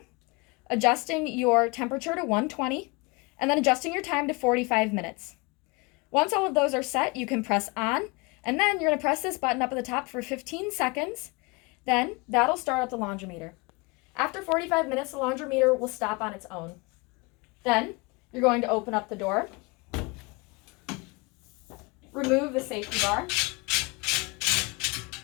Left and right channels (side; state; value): right; quieter; 27.5 dB